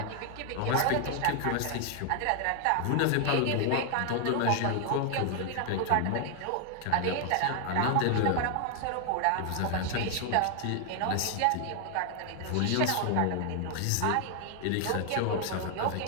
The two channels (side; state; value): both; different; correlation 0.00